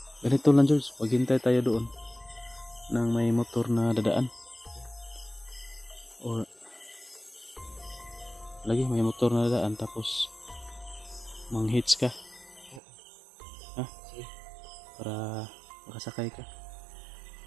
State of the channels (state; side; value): drops out; left; at 12.8 s